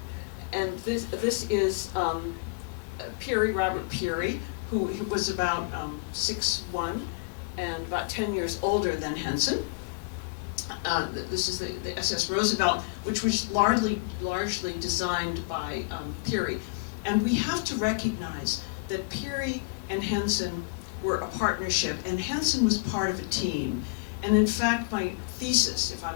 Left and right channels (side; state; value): right; quieter; 30.0 dB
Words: And this is Puri, Robert Puri, who was about 6'1" and about 10 years older than Henson. This is the SS Roosevelt, which was largely designed by Puri. And we have to recognize that Puri and Henson were a partnership, and Henson was part of a team. And in fact, my thesis, if I